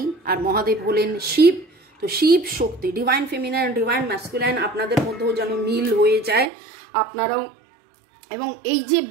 আর মহাদেব হলেন শিব, তো শিব শক্তি, ডিভাইন ফেমিনাইন ডিভাইন ম্যাসকুলাইন আপনাদের মধ্যেও যেন মিল হয়ে যায় আপনারাও। এবং এই যে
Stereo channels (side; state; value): left; drops out; at 6.5 s